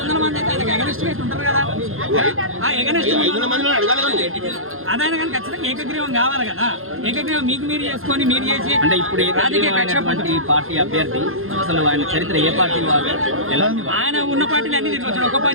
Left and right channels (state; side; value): late; left; 0.61 ms